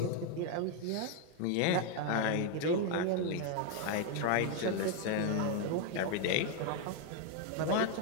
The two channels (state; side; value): different; both; correlation 0.01